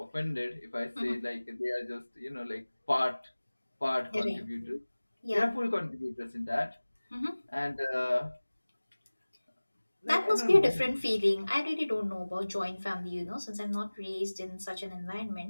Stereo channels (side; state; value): both; inverted; correlation -1.00